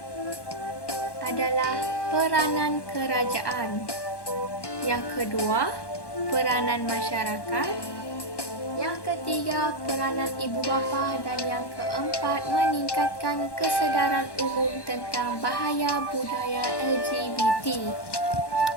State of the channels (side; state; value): right; late; 1.1 ms